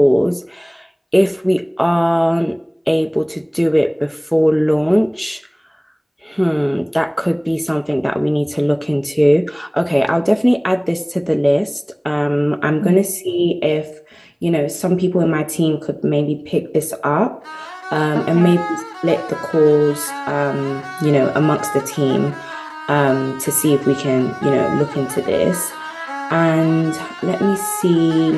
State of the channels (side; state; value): both; identical; correlation 1.00